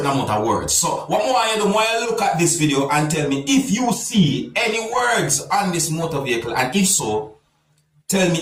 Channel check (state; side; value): identical; both; correlation 1.00